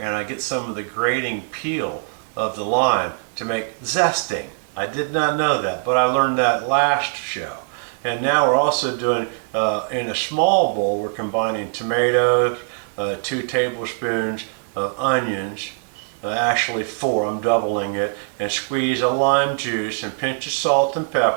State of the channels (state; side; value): silent; left; digital silence